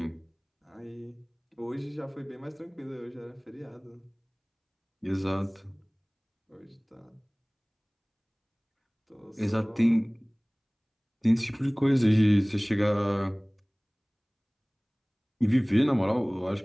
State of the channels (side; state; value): both; identical; correlation 1.00